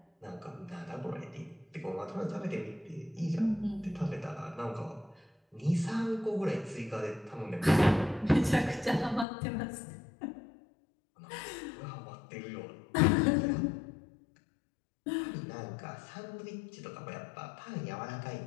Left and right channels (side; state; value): right; drops out; at 9.2 s